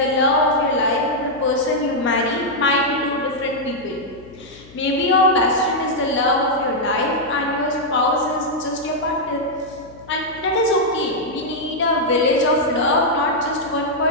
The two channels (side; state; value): left; noise; hum, 22 dB below the sound